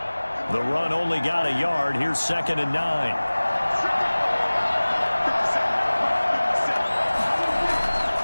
The run only got a yard. Here's 2nd and 9.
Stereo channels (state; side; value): inverted; both; correlation -1.00